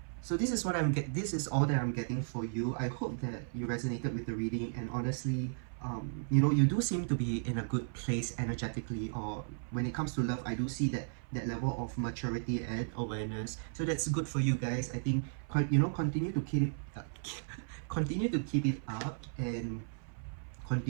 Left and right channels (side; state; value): left; silent; 54 dB below the other